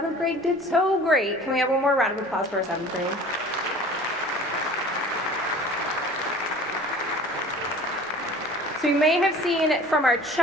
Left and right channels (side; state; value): both; normal; correlation 0.44